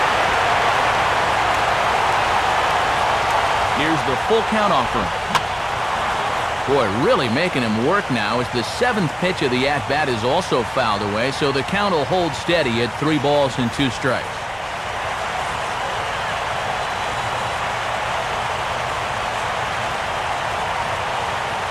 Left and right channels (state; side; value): identical; both; correlation 1.00